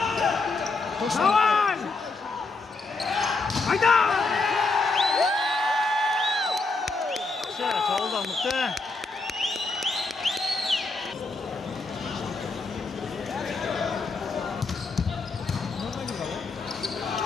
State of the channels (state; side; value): quieter; right; 3.7 dB